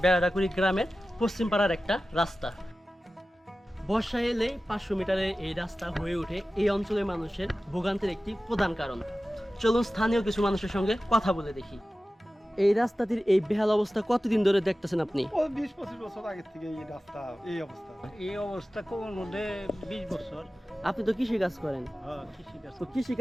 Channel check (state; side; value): normal; both; correlation 0.95